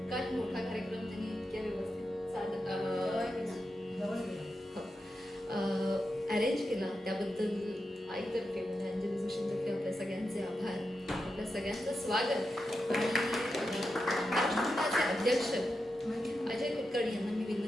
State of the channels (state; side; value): normal; both; correlation 0.88